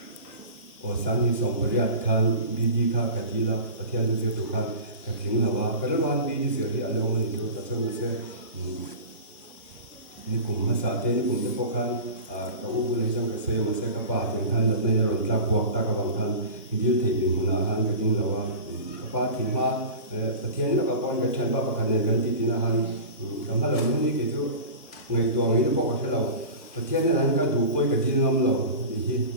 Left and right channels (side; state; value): both; inverted; correlation -0.33